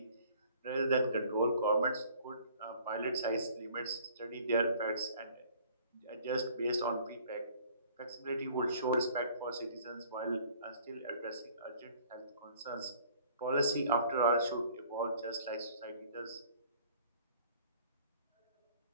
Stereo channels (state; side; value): inverted; both; correlation -0.54